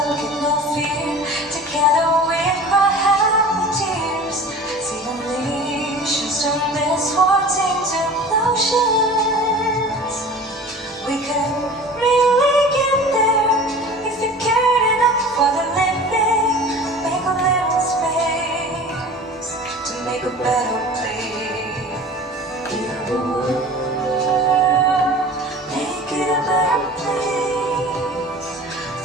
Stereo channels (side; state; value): both; normal; correlation 0.40